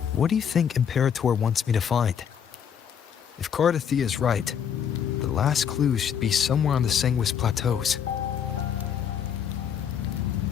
what do you think Imperator wants me to find? If Cardathia is right, the last clue should be somewhere on the Sanguis Plateaus.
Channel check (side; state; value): right; quieter; 8.1 dB